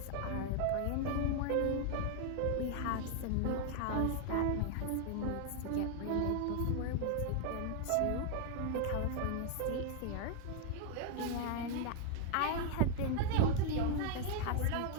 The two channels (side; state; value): both; different; correlation 0.00